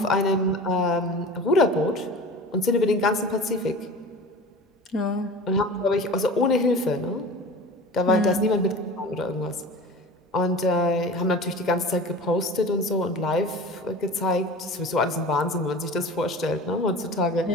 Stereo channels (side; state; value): both; normal; correlation 0.37